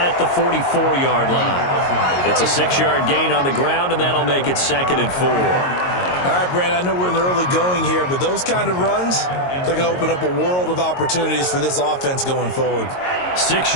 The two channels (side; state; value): right; late; 22 ms